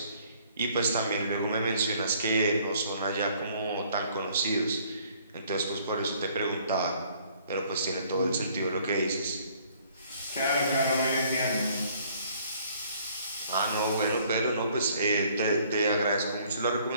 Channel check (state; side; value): inverted; both; correlation -0.60